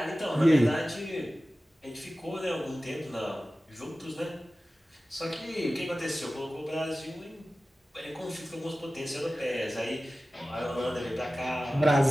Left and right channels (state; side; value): normal; both; correlation 0.96